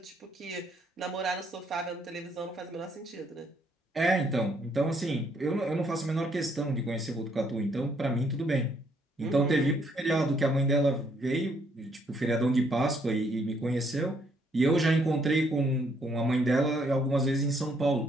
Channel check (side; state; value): both; normal; correlation 0.70